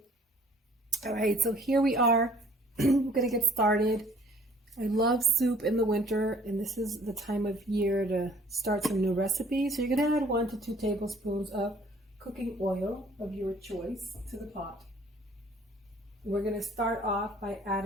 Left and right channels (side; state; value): both; normal; correlation 0.56